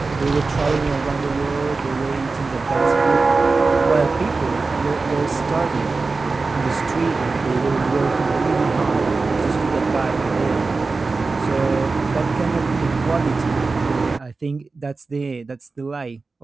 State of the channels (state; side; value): quieter; left; 4.0 dB